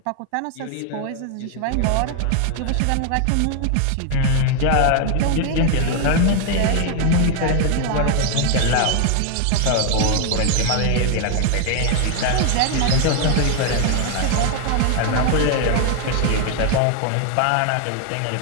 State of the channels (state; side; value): different; both; correlation 0.01